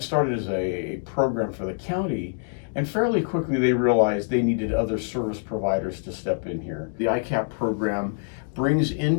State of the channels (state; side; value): silent; right; digital silence